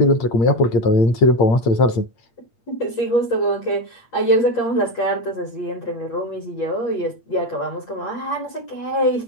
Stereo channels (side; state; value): right; late; 8.6 ms